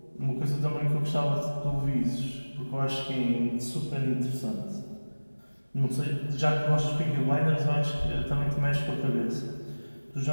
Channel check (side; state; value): both; inverted; correlation -1.00